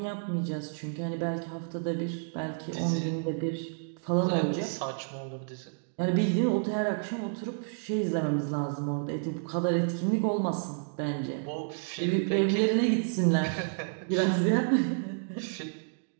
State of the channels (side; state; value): left; silent; digital silence